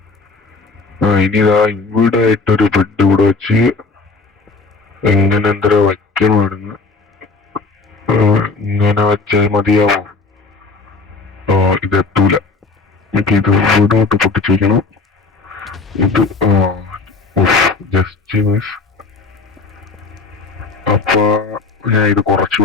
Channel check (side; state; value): right; quieter; 4.1 dB